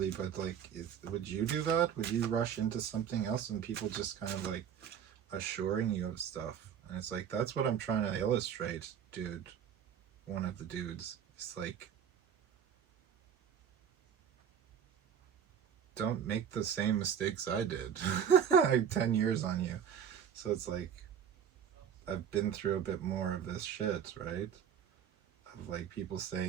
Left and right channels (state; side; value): quieter; left; 8.4 dB